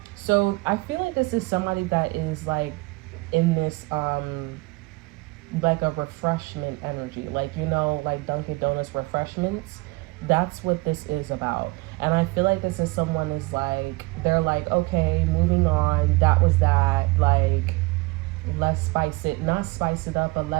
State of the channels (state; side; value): quieter; left; 23.8 dB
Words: So I feel like this is somebody that is like in this like a refreshment energy, like, you know, like Dunkin' Donuts refreshments. That's what this is about. And I feel like this is someone is like, they're like, okay, moving on, that was that, like, let's spice it, not spice it up, but